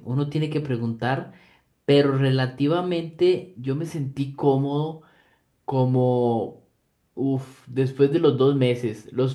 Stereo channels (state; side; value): identical; both; correlation 1.00